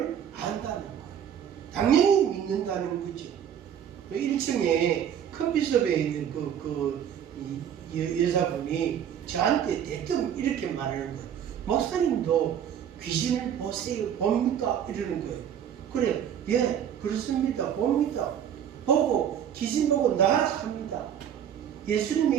안다는 거예요. 당연히 믿는다는 거죠. 1층에 커피숍에 있는 여자분이 저한테 대뜸 이렇게 말하는 거예요. 목사님도 귀신을 보세요, 봅니까? 이러는 거예요. 그래, 예, 그렇습니다. 봅니다. 보고 귀신 보고 나락합니다.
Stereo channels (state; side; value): quieter; left; 9.2 dB